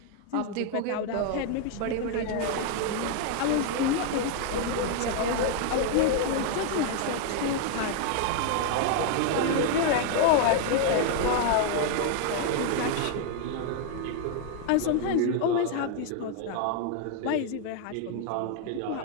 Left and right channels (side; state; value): both; different; correlation 0.00